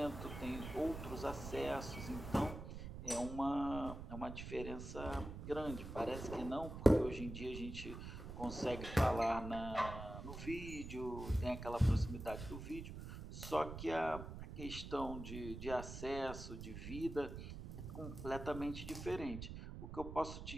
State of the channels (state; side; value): noise; right; rumble, 8 dB below the sound